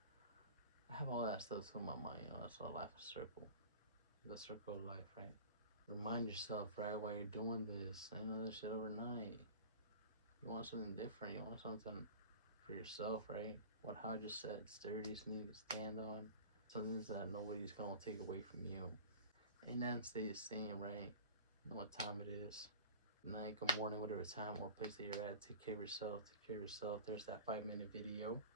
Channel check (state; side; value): inverted; both; correlation -0.37